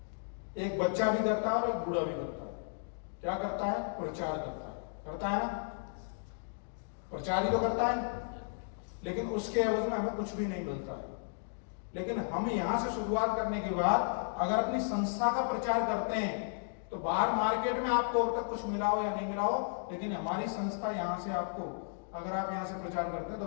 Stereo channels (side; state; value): right; silent; digital silence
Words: एक बच्चा भी करता है और एक बूढ़ा भी करता है। क्या करता है? प्रचार करता है ना? प्रचार ही तो करता है, लेकिन उसके एवज में हमें कुछ भी नहीं मिलता है। लेकिन हम यहां से शुरुआत करने के बाद अगर अपनी संस्था का प्रचार करते हैं तो बाहर मार्केट में आपको अब तक कुछ मिला हो या नहीं मिला हो, लेकिन हमारी संस्था यहां से आपको, अगर आप यहां से प्रचार करते हैं तो